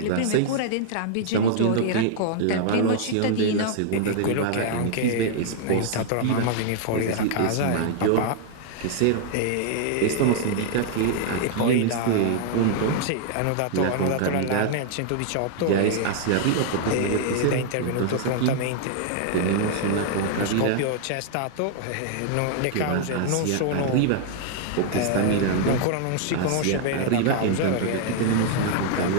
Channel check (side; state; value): both; different; correlation -0.01